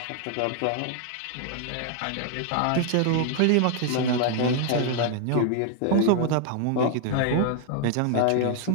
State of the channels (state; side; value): different; both; correlation 0.00